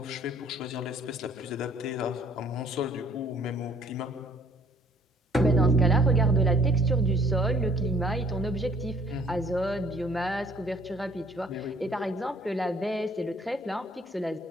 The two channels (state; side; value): normal; both; correlation 0.58